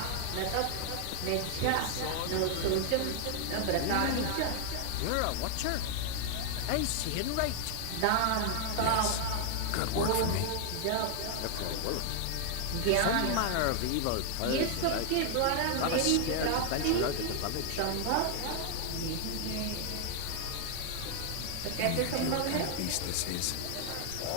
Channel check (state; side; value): different; both; correlation 0.00